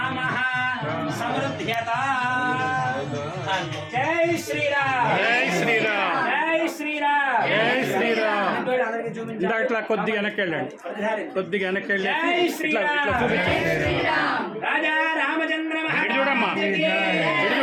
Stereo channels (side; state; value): both; identical; correlation 1.00